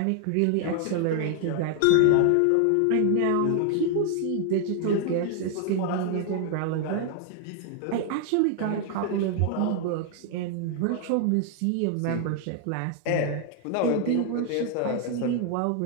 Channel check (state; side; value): different; both; correlation 0.00